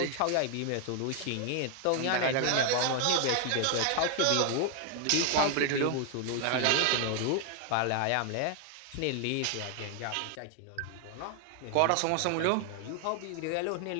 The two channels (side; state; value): both; different; correlation 0.00